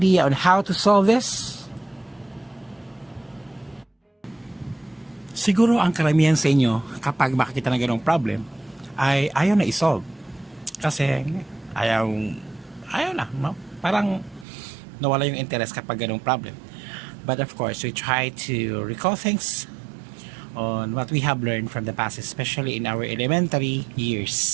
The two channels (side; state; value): left; drops out; at 14.5 s